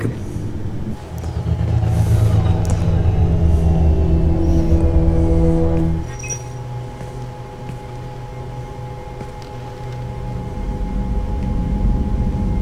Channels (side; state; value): both; identical; correlation 1.00